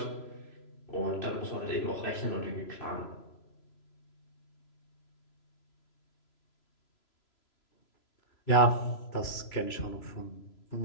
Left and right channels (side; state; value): right; late; 3.0 ms